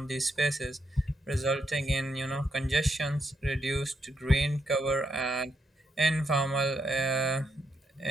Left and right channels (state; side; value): normal; both; correlation 0.79